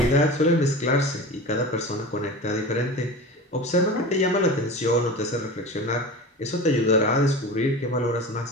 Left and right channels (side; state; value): both; normal; correlation 0.32